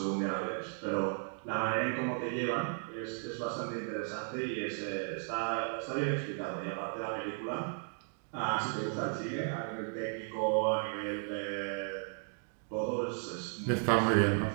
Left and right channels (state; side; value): silent; left; 54 dB below the other